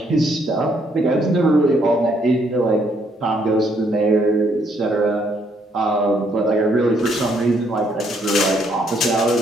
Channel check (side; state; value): both; normal; correlation 0.70